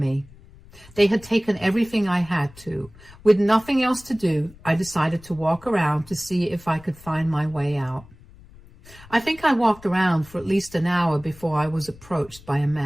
They had taken everything I had to. With nothing else to do, I decided to walk around to see if I could find my way out. I think I walked around for at least an hour before I was approached by a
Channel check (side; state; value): left; noise; rumble, 22 dB below the sound